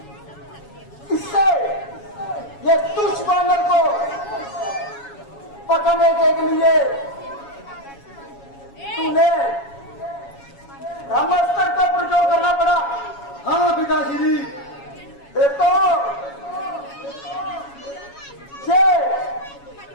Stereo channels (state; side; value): late; right; 7.2 ms